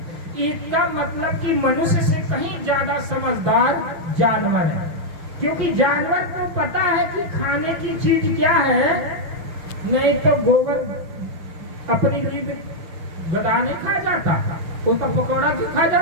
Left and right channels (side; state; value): left; late; 6.2 ms